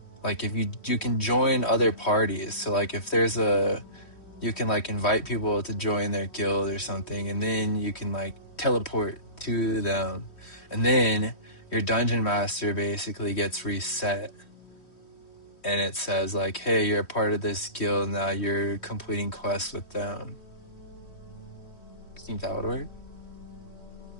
like if you can join other parties. So like if there's you can like invite people to join their guild or something, and then you can like teleport to them, and then your dungeon master basically gets reset, and it says like, hey, you're a part of this guild now, you're completing quests with them. I think that would work.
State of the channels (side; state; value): right; late; 3.1 ms